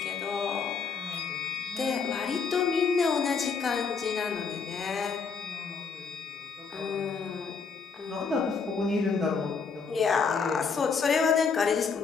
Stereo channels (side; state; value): right; quieter; 5.4 dB